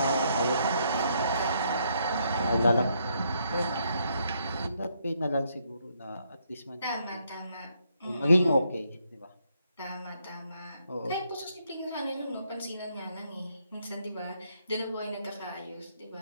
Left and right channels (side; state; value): both; inverted; correlation -0.74